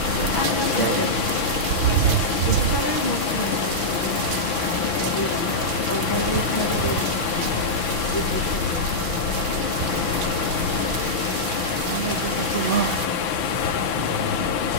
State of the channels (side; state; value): right; late; 6.0 ms